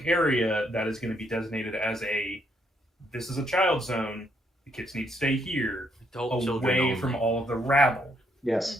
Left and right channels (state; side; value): normal; both; correlation 0.73